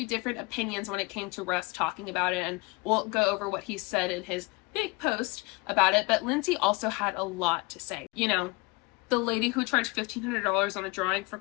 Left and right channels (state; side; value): quieter; right; 25.8 dB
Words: different opinions when it came to Russ talking about it, and we'll go over what he said in his big post about it, but Lindsay also had a lot to say. You know, the lady who charged $1,500 on a drawing for